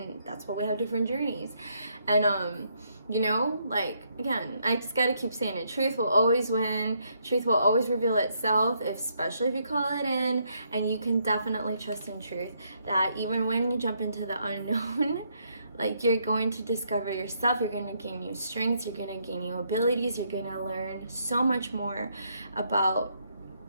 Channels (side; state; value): both; inverted; correlation -0.74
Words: that's why we have different journeys. And you know, like, again, I just gotta keep saying it. Truth will always win. Truth will always reveal itself, especially if you call it in. And you can definitely trust in truth that even when you jump into the unknown, like, you're going to discover yourself, you're going to gain new strengths, you're going to gain new abilities, you're going to learn so much more about